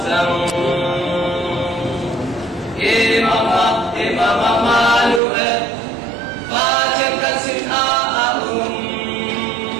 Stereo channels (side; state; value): left; drops out; at 5.2 s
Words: rằng Imam Manuel và chân căn xin